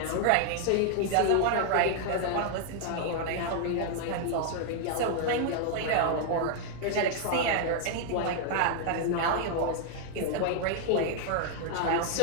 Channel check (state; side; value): different; both; correlation 0.00